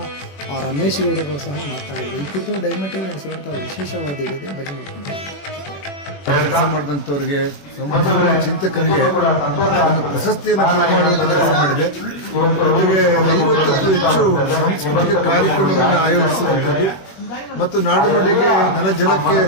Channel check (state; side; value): late; right; 21 ms